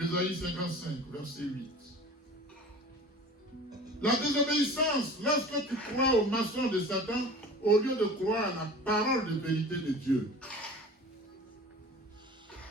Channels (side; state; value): both; normal; correlation 0.40